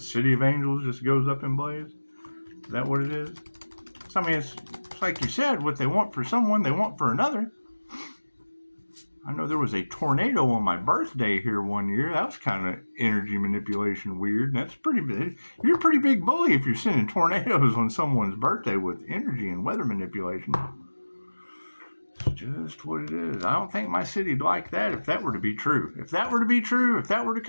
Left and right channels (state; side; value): inverted; both; correlation -1.00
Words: city of angels just goes up in blaze? Is that what it is? So, I mean, it's like you said, what they want for someone, they want for another. I know there was a tornado on my birthday here one year. That was kind of energy manipulation weird. That's pretty big. You're a pretty big bully if you're sending tornadoes on someone's birthday with energy and weather manipulation. It's just what it is. I don't think my city'd like that if that were to be true. If that were to